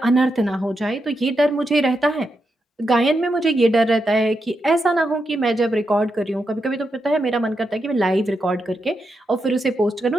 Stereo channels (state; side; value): normal; both; correlation 0.85